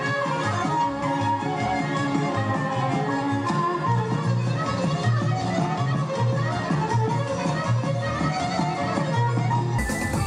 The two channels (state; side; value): identical; both; correlation 1.00